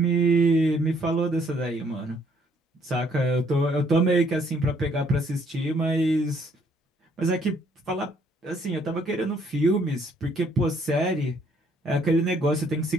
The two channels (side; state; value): both; normal; correlation 0.65